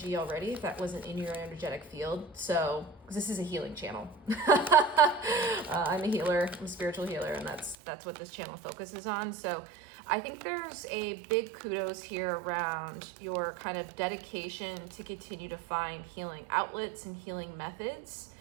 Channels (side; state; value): left; drops out; at 7.8 s